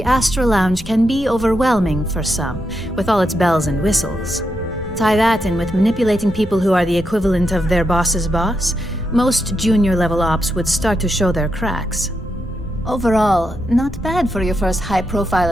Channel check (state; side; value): normal; both; correlation 0.83